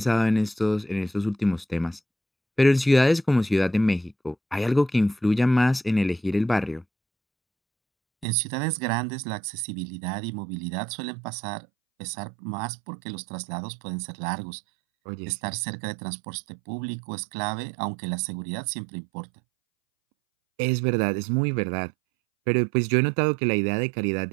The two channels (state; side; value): drops out; left; at 8.2 s